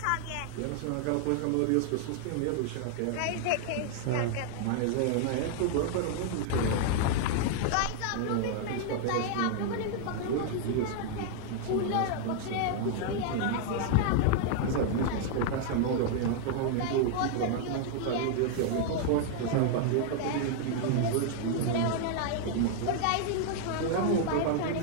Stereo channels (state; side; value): different; both; correlation 0.00